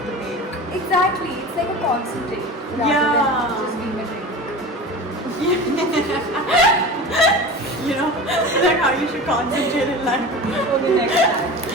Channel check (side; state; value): both; normal; correlation 0.33